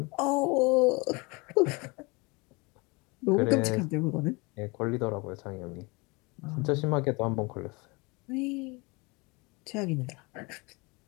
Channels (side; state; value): right; quieter; 27.3 dB